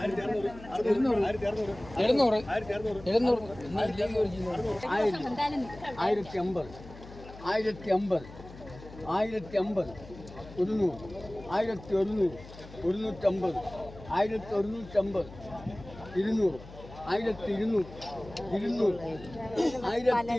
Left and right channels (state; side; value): noise; left; hum, 17 dB below the sound